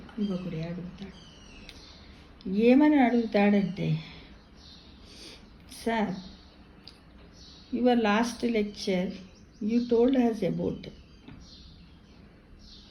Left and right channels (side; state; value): both; identical; correlation 1.00